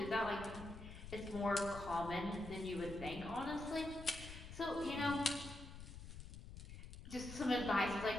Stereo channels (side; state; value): left; noise; rumble, 11 dB below the sound